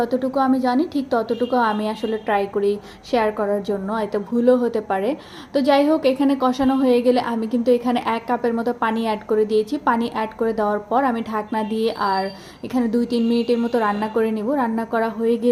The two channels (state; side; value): identical; both; correlation 1.00